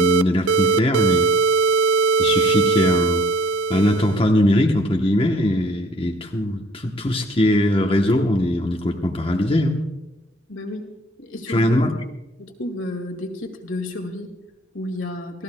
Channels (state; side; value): normal; both; correlation 0.55